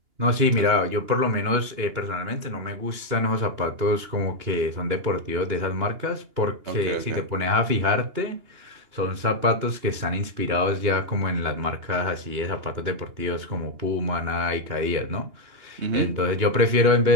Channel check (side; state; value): left; late; 2.9 ms